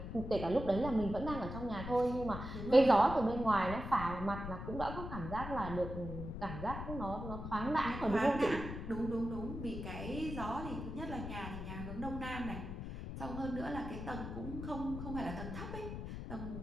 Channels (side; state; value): left; noise; rumble, 7 dB below the sound